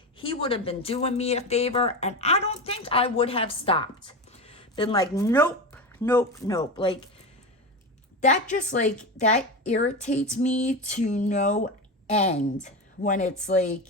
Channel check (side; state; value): both; normal; correlation 0.21